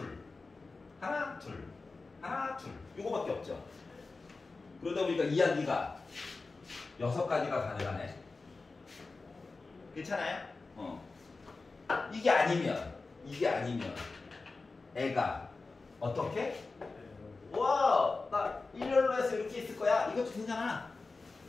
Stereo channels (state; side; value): quieter; right; 3.8 dB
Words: 하나, 둘, 하나, 둘. 요거밖에 없죠. 그러다 보니까 이야기가 6가지가 가능하네. 괜찮아요? 이게 아니면 애가 어떻게? 와, 나 일렬로 해서 이렇게 있을 거야. 이것도 괜찮아.